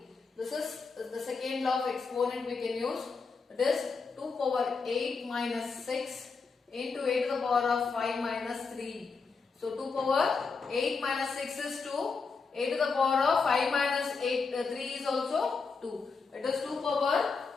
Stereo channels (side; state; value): right; quieter; 4.8 dB